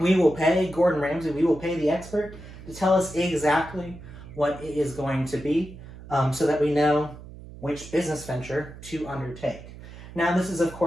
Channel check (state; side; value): noise; right; hum, 16 dB below the sound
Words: will pay Gordon Ramsay, we will pay the expert to tell us exactly what it is going to be so that we know which business venture to undertake. Now, this is, of